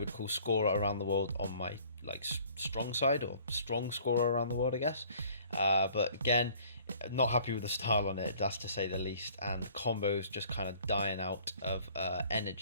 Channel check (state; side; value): inverted; both; correlation -0.54